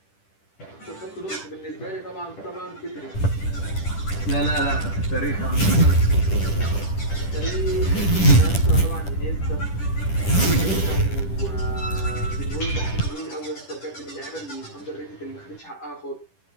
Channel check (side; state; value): right; late; 10 ms